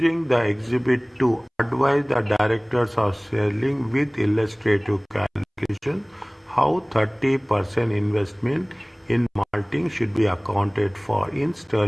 the exhibit to advise the directors of selling with illustrative calculation how 30% investment in malting should be accounted for in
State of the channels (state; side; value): identical; both; correlation 1.00